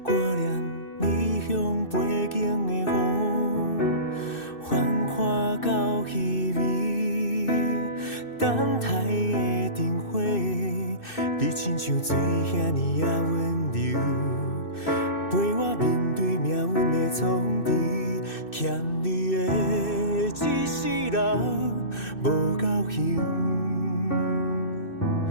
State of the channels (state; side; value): late; right; 2.6 ms